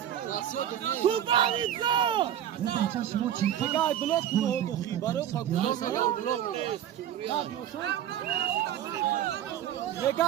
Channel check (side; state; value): left; quieter; 10.8 dB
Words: Тупаница! Бегай, блок много, баро как блок